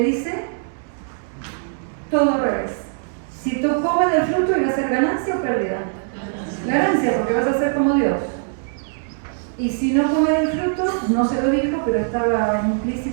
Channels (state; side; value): silent; left; digital silence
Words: todo al revés. Si tú comes del fruto, ¿iba a ser ganancia o pérdida? Ganancia, porque vas a ser como Dios. Y si no comes del fruto, no se lo dijo, pero estaba